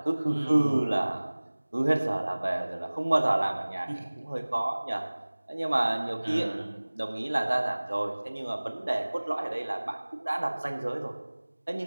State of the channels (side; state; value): both; inverted; correlation -1.00